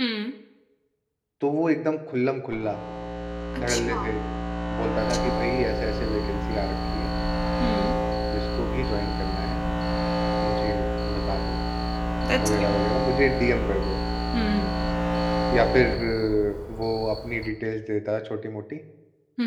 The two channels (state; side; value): identical; both; correlation 1.00